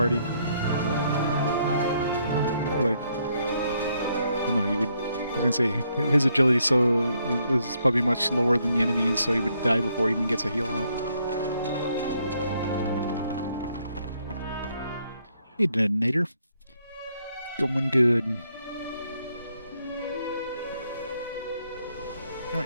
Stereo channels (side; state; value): both; inverted; correlation -0.73